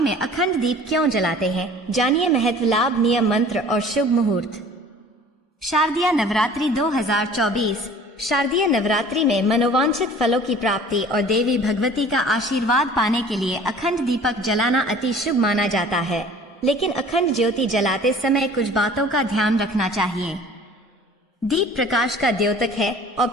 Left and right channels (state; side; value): normal; both; correlation 0.48